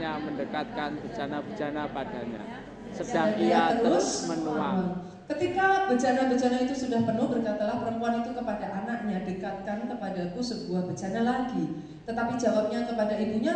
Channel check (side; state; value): both; identical; correlation 1.00